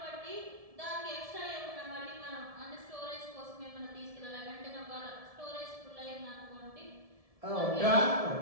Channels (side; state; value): left; late; 1.7 ms